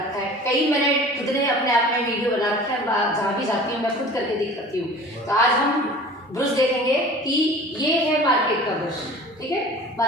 है, कई मैंने खुद ने अपने आप में वीडियो बना रखा है, जहाँ भी जाती हूँ मैं खुद करके दिखाती हूँ। तो आज हम ब्रश देखेंगे कि ये है मार्केट का ब्रश, ठीक है।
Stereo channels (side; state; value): both; normal; correlation 0.42